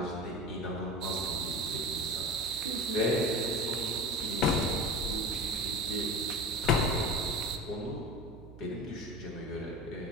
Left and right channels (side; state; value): right; noise; hum, 17 dB below the sound